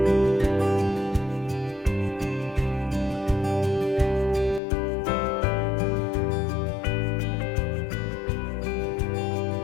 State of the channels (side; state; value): right; drops out; at 4.6 s